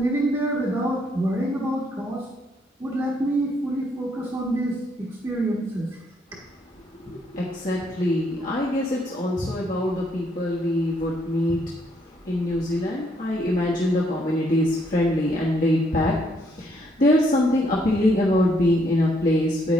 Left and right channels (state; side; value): normal; both; correlation 0.71